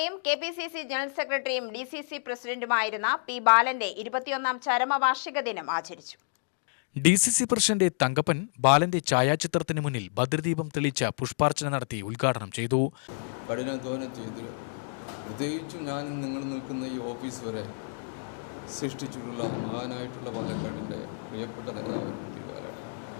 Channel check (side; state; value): right; silent; digital silence